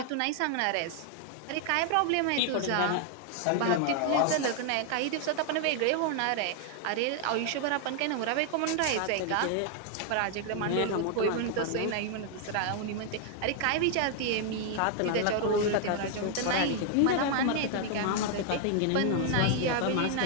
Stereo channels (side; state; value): both; different; correlation 0.00